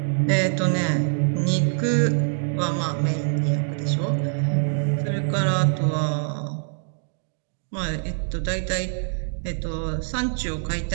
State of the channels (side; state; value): left; silent; digital silence